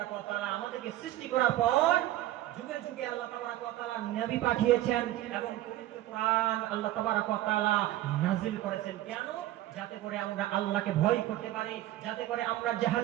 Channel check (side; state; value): left; quieter; 14.8 dB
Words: ওয়া তাআলা আমাদেরকে সৃষ্টি করার পর যুগে যুগে আল্লাহ তাবারক ওয়া তাআলা নবী পাঠিয়েছেন এবং পবিত্র কোরআন আল্লাহ তাবারক ওয়া তাআলা নাযিল করেছেন। কেন? যাতে করে আমরা আল্লাহকে ভয় করতে পারি, যাতে করে আমরা